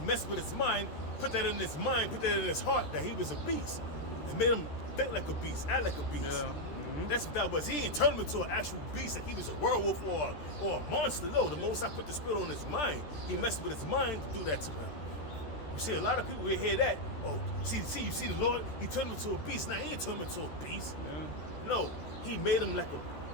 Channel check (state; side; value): late; right; 13 ms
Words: messed with his mind, put that in his mind, put that in his heart that he was a beast. And made him think like a beast, act like a beast. Yeah. That's what that was. He ain't turned him into an actual beast, like he was a werewolf or a monster. No, the Most High put the spirit on his mind. He messed with his mind to do that to him. You see, a lot of people will hear that. Oh, you see the Lord? He turned him into a beast. Now he ain't turned him into a beast. Yeah. No, he made him like